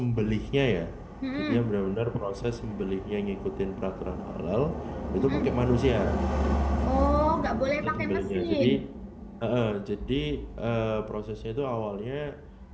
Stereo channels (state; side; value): identical; both; correlation 1.00